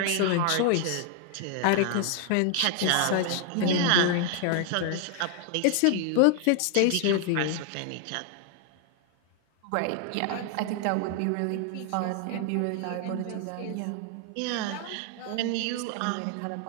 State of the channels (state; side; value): different; both; correlation 0.00